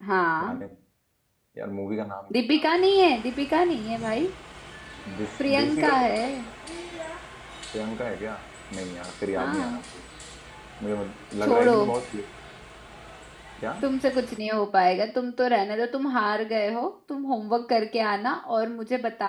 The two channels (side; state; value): both; identical; correlation 1.00